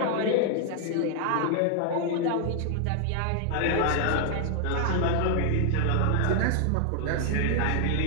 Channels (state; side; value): different; both; correlation 0.00